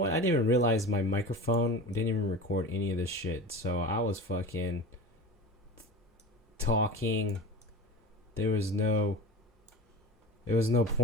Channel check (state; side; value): normal; both; correlation 0.32